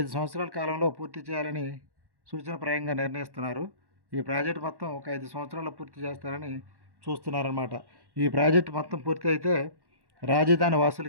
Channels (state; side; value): late; left; 1.1 ms